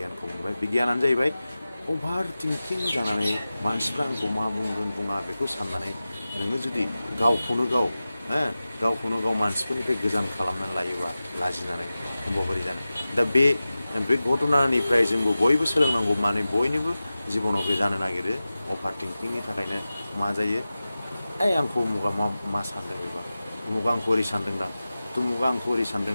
मोनबाय बे गियानानो जाहैबाय अभार थिंकिं जानानै मानसिफ्रा आंखौ मा बुंगोन बुङा बेखौ साननानै नोङो जुदि गावखौनो गाव मानसिफोरनिफ्राय गोजान खालामनानै लायोबा लाजिनानै होमबा बोरै जानो दा बे घटनानिफ्राय जोंबो बयबो सोलोंनांगौ माने बयनिबो जिबनाव बे जानो नागिरो अभार थिंकिंनि थाखायनो मा जायो आंखौ उमुगा मा सानदों बेबा उमुगा आंखौ ओरै सानदोंदां तुमुगा आंखौ ओरै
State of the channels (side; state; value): both; inverted; correlation -0.95